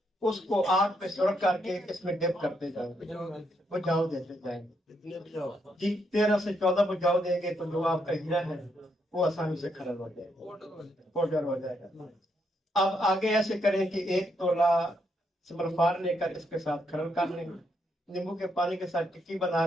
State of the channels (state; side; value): normal; both; correlation 0.77